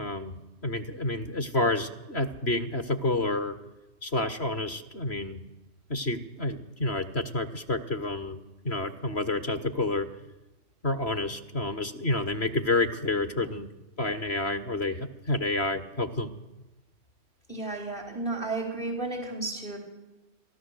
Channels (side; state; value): right; late; 3.0 ms